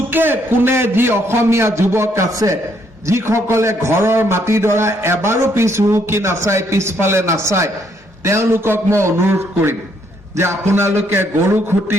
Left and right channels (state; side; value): normal; both; correlation 0.71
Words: কোণে যি অসমীয়া যুৱক আছে, যিসকলে ঘৰৰ মাটিডৰা এবাৰো পিছ হুহুকি নাচায়, পিছফালে নাচায়, তেওঁলোকক মই অনুৰোধ কৰিম যে আপোনালোকে গৰুখুটি